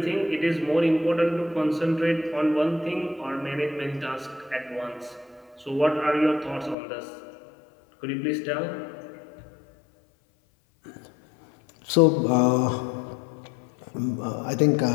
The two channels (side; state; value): right; drops out; at 6.8 s